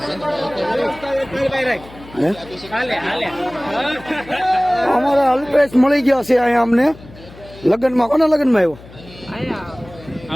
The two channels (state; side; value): noise; left; hum, 20 dB below the sound